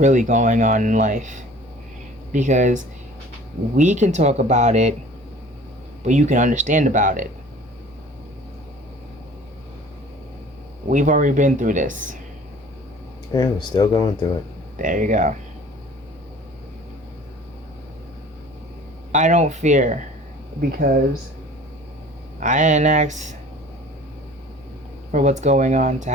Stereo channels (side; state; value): both; normal; correlation 0.47